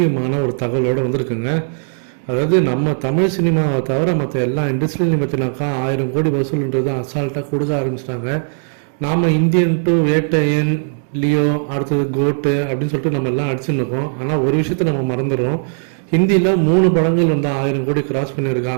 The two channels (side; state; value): left; silent; digital silence